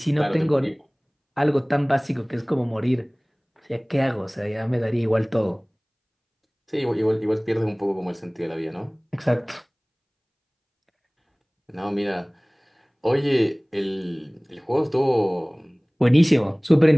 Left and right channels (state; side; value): identical; both; correlation 1.00